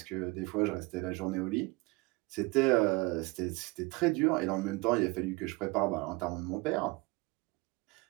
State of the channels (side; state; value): left; quieter; 24.5 dB